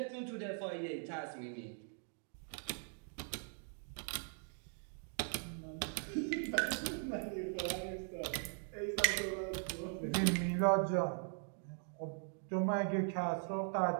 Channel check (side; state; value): left; silent; 51 dB below the other